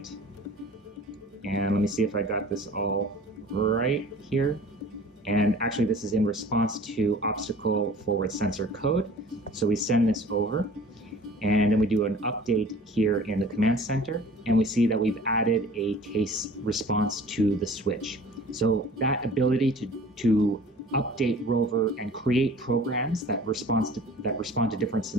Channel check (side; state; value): both; normal; correlation 0.46